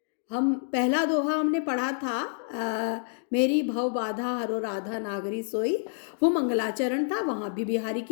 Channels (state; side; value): silent; right; digital silence